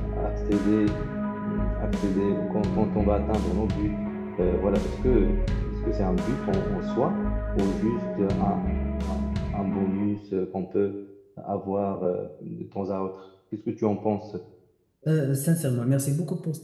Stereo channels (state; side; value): identical; both; correlation 1.00